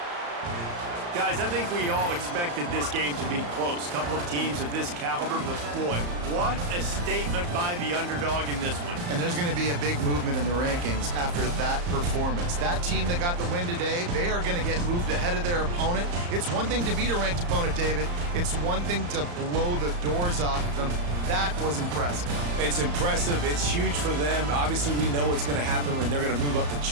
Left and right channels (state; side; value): late; left; 34 ms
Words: Guys, I think we all expected this game to be close. Couple of teams of this caliber, but boy, what a statement by the underdog in this one. And there's going to be a big movement in the rankings after that performance. That team that got the win today, they are going to get moved ahead of their opponent. It's one thing to beat a ranked opponent, David. It's one thing to blow the doors off of them. That was impressive. It's impressive. It's huge for them. Obviously, we know what's going to happen when they're going to move up the